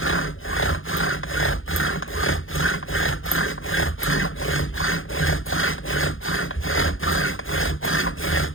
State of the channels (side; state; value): right; late; 0.59 ms